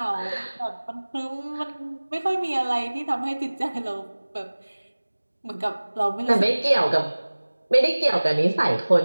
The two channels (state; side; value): inverted; both; correlation -1.00